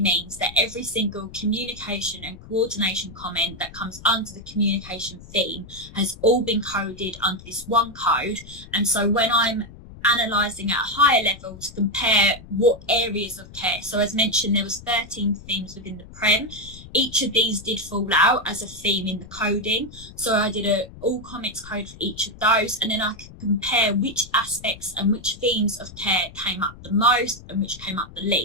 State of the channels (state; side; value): noise; left; rumble, 18 dB below the sound